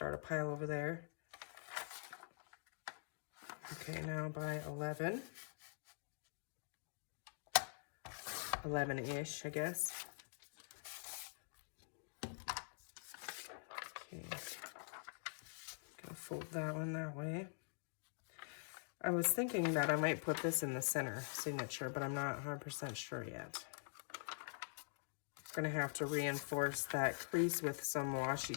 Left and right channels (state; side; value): silent; right; digital silence